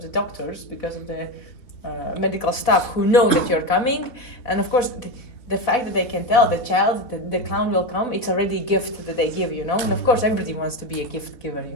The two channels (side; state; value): right; late; 4.1 ms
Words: the doctors, because of the medical staff who know that you're coming, and of course the fact that they can tell the child that the clown will come, it's already a gift that they give, you know. And of course everybody wants to be a gift giver,